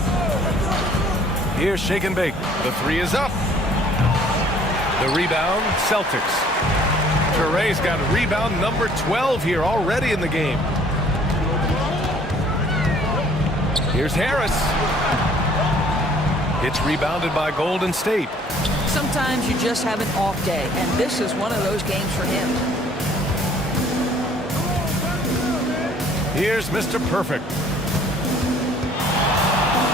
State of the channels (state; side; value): normal; both; correlation 0.57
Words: Here's Shake and Bake. The 3 is up. The rebound, Celtics. Toure's got rebound number 12 here already in the game. Here's Harris. It's rebounded by Golden State. Sometimes you just have an off day, and this is one of those games for him. Here's Mr. Perfect.